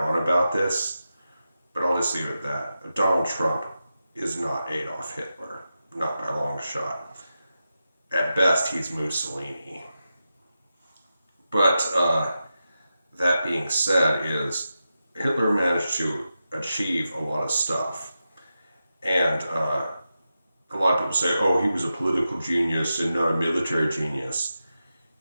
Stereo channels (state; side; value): inverted; both; correlation -0.90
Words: about this, but I'll just leave it at that. Donald Trump is not Adolf Hitler, not by a long shot. At best, he's Mussolini. But that being said, is Hitler managed to achieve a lot of stuff, and a lot of people say, "Oh, he was a political genius and not a military genius."